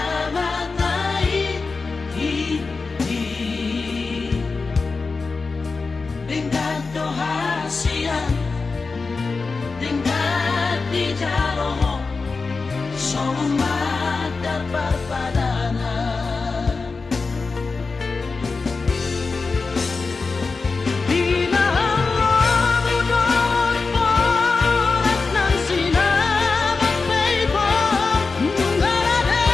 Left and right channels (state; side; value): quieter; right; 4.3 dB